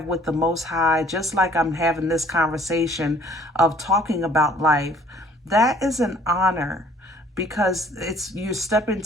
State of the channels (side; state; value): both; normal; correlation 0.56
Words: with the Most High, just like I'm having this conversation of talking about life, that is an honor, because you step